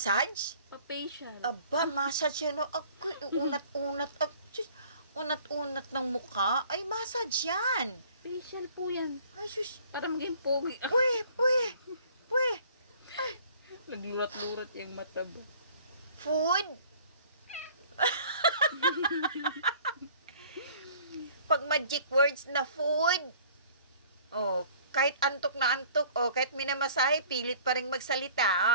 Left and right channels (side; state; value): both; inverted; correlation -0.52